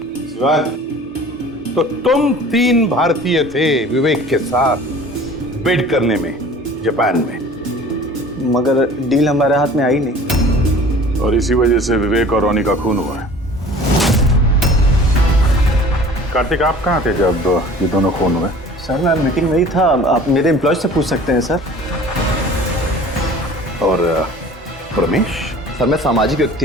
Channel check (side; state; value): both; normal; correlation 0.46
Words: शिवानी, तो तुम 3 भारतीय थे विवेक के साथ बिड करने में जापान में, मगर डील हमारे हाथ में आई नहीं, और इसी वजह से विवेक और रोनी का खून हुआ है। कार्तिक आप कहाँ थे जब ये दोनों खून हुए? सर मैं मीटिंग में ही था, आप मेरे एम्प्लॉय से पूछ सकते हैं सर। और प्रमेश? सर मैं सामाजिक व्यक्ति